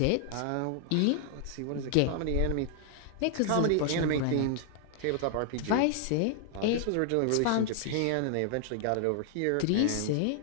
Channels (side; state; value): both; different; correlation 0.00